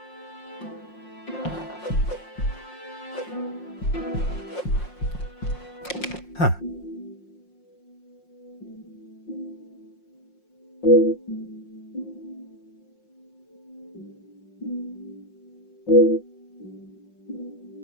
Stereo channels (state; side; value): late; right; 5.6 ms